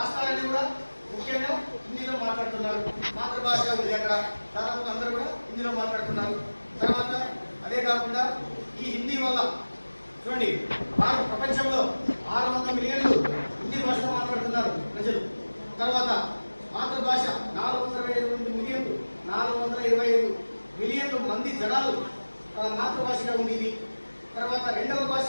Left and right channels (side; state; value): both; inverted; correlation -1.00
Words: కూడా ముఖ్యంగా హిందీలో మాట్లాడుతున్నారు. మాతృభాష ఉంది అక్కడ, దాదాపు అందరూ కూడా హిందీలో మాట్లాడుతున్నారు. తర్వాత అదే కాకుండా ఈ హిందీ వల్ల చూడండి ప్రపంచంలో 600 మిలియన్లు హిందీ భాషలో మాట్లాడుతున్నారు ప్రజలు. తర్వాత మాతృభాష 425 మిలియన్లు మంది జనాలు మాతృభాషగా ఉంది ఇది. తర్వాత రెండవ భాష